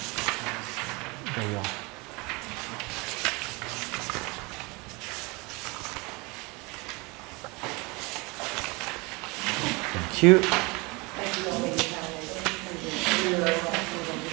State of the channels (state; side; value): quieter; left; 26.6 dB